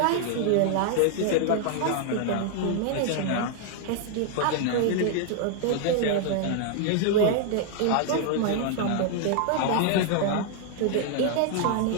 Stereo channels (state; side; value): different; both; correlation 0.00